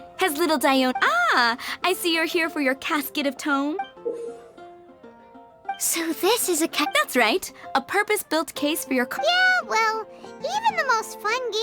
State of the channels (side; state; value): both; identical; correlation 1.00